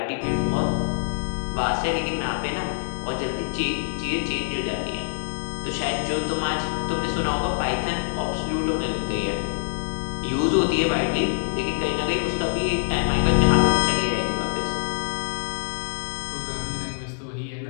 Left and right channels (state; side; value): silent; right; digital silence